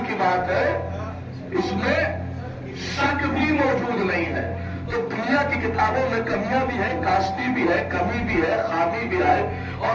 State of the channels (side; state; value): both; identical; correlation 1.00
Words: خامی بھی ہے